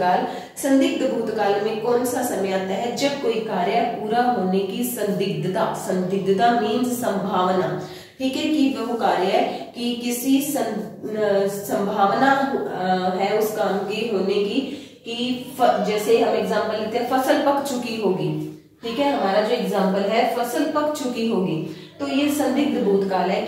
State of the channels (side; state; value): both; identical; correlation 1.00